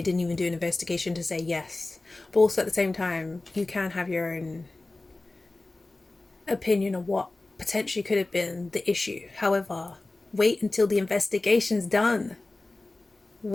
didn't even do an investigation to say yes. But also at the same time, you can have your own opinion on what potentially could have been the issue. However, wait until the investigation's done.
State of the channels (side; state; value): right; quieter; 3.0 dB